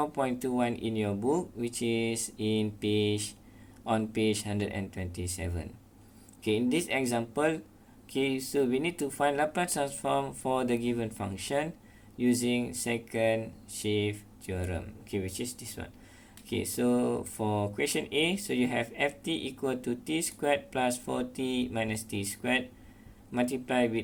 in your book, which is on page 127. In this example, so we need to find Laplace transform for the given function using second shift theorem, which is this one. So for question A, so you have ft equal to t squared plus 4t minus t squared multiply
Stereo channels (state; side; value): identical; both; correlation 1.00